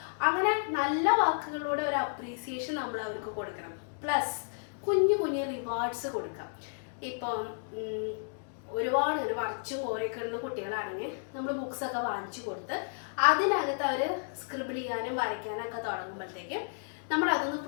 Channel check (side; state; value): right; silent; digital silence